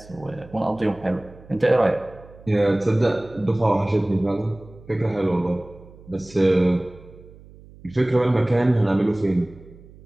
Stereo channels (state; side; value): noise; right; hum, 22 dB below the sound